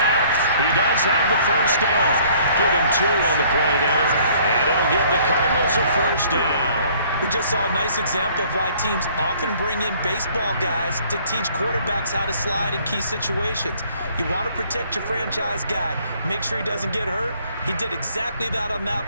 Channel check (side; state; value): both; inverted; correlation -0.59